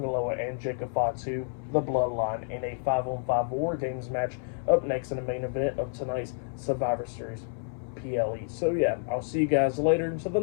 Loa, and Jacob Fatu, the Bloodline, in a 5-on-5 War Games match up next in the main event of tonight's Survivor Series PLE. So yeah, I'll see you guys later until the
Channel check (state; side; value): silent; right; 58 dB below the other